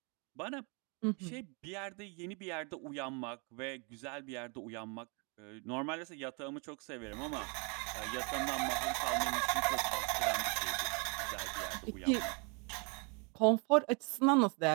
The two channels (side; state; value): left; quieter; 33.6 dB